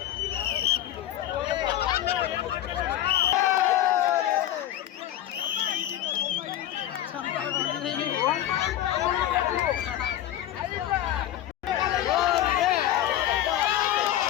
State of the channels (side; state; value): right; quieter; 12.5 dB